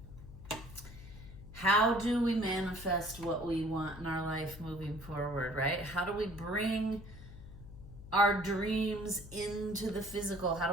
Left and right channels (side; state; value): left; noise; hum, 15 dB below the sound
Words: How do we manifest what we want in our life moving forward, right? How do we bring our dreams into the physical? How